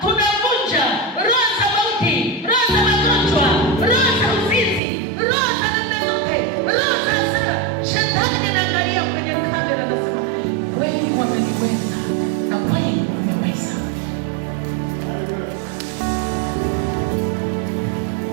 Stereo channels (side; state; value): left; drops out; at 4.8 s